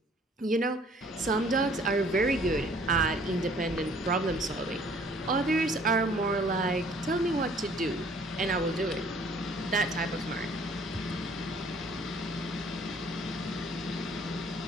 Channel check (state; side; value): normal; both; correlation 0.57